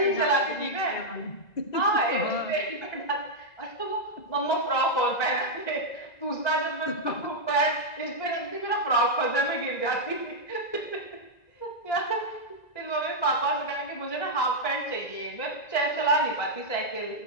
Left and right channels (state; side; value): late; right; 2.0 ms